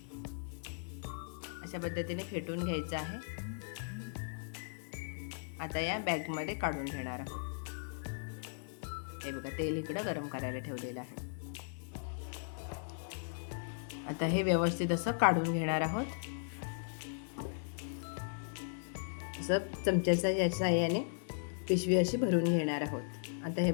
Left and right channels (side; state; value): right; silent; digital silence